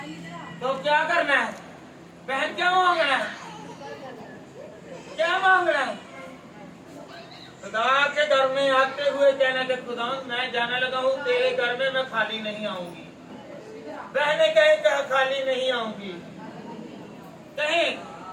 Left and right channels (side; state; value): both; identical; correlation 1.00